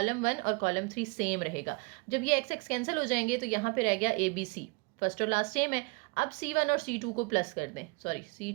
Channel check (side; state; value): left; quieter; 29.1 dB